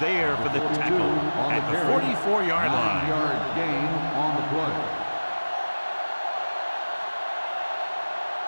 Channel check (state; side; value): inverted; both; correlation -1.00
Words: for the tackle at the 44-yard line. 9-yard gain on the play.